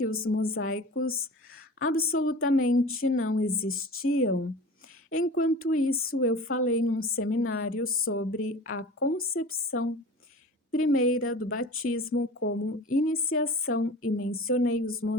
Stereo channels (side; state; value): both; normal; correlation 0.37